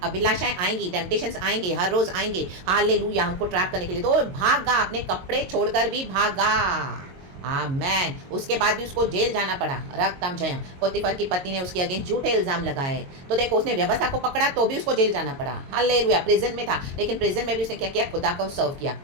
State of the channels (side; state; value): left; late; 22 ms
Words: अभिलाषाएं आएंगी, टेम्पटेशंस आएंगे, हर रोज आएंगे, हालेलुया, हमको ट्रैप करने के लिए। तो भागा, अपने कपड़े छोड़कर भी भागा, आमेन। उसके बाद भी उसको जेल जाना पड़ा, रक्तम जयम। पोतीफर की पत्नी ने उसके अगेंस्ट झूठे इल्जाम लगाए, तो देखो, उसने व्यवस्था को पकड़ा तो भी उसको जेल जाना पड़ा, हालेलुया। प्रिजन में था, लेकिन प्रिजन में भी उसने क्या किया? खुदा को सर्व किया,